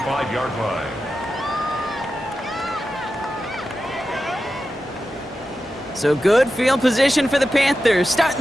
line. So good field position for the Panthers. Starting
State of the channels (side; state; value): both; normal; correlation 0.91